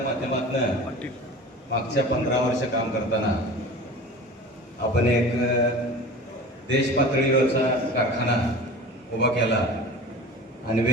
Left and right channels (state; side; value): normal; both; correlation 0.37